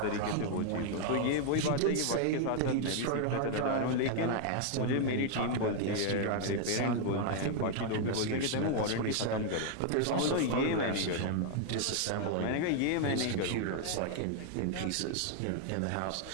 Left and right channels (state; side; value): different; both; correlation 0.00